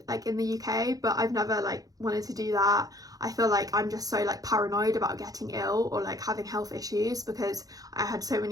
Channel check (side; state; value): left; late; 0.18 ms